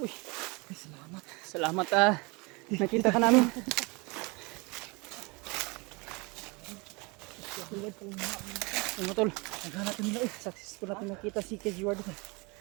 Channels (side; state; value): left; quieter; 27.5 dB